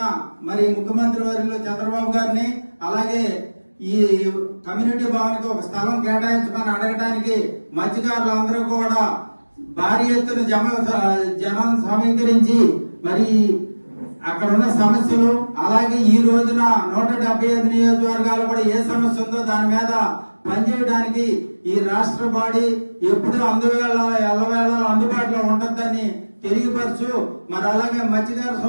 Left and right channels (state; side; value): inverted; both; correlation -1.00